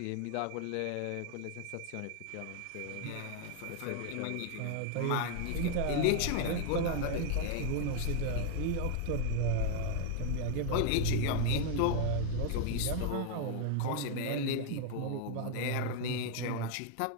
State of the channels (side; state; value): both; different; correlation 0.00